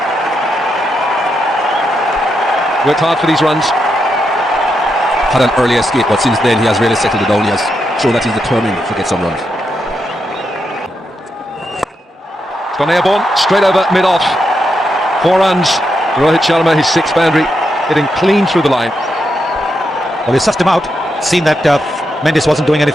Worked hard for these runs. Had an early escape, but since then he has really settled it down. He has shown that he's determined to get some runs. It's gone airborne, straight over mid-off. 4 runs. Rohit Sharma, his 6th boundary, hitting clean through the line. Well, he sussed him out. Seen that Mendes wasn't doing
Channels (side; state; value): both; normal; correlation 0.83